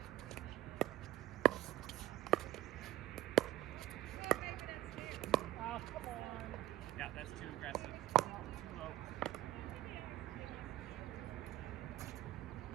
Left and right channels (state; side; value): quieter; left; 15.2 dB